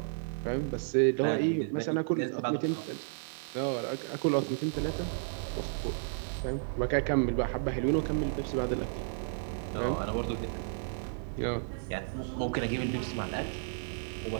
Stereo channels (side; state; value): left; silent; digital silence